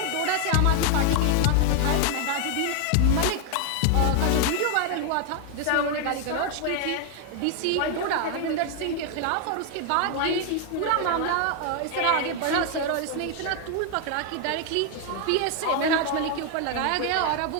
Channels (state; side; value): different; both; correlation 0.01